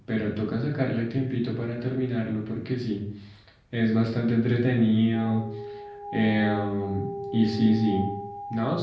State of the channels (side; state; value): both; identical; correlation 1.00